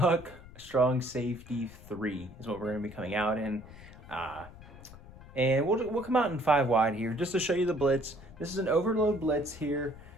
strong safety 3 is what we're going to be coming out in. And we'll come out in 5 wide here just to show you the blitz. This is an overload blitz here.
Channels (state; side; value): noise; left; rumble, 18 dB below the sound